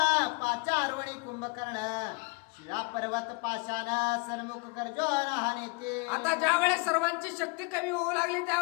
पाचारवणी कुंभकर्ण शिळा पर्वत पाशान सन्मुख कर्जोन हा नेते. आता ज्या वेळेस सर्वांची शक्ती कमी होऊ लागली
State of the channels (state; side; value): quieter; right; 29.9 dB